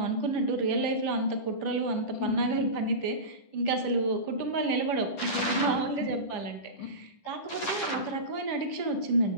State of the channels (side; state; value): right; late; 10 ms